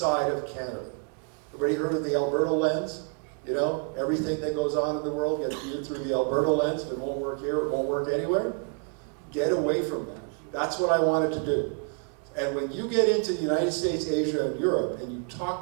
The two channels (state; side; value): quieter; left; 38.0 dB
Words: of Canada. Everybody heard of the Alberta lens? You know, everything that goes on in the world gets viewed through the Alberta lens. If it won't work here, it won't work anywhere. Get away from that. That's what I wanted to do. And when you get into the United States, Asia, and Europe, and you